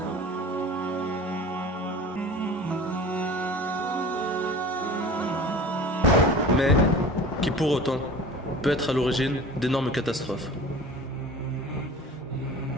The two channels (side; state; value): both; normal; correlation 0.40